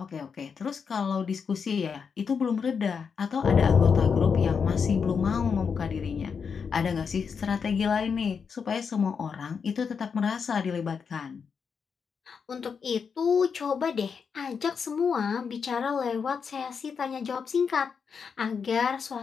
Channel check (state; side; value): quieter; right; 6.1 dB